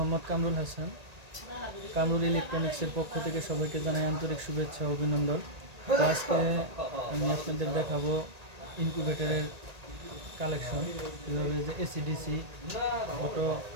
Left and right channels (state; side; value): late; left; 1.8 ms